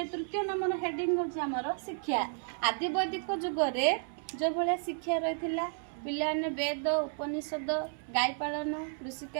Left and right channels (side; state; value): left; silent; 56 dB below the other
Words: नंबर हेडिंग होची हमर शिक्षा आदि वैदिक जुगरे जो भले शिक्षा रहिथिला पिलाने वेद उपनिषद गाय पालन कृषि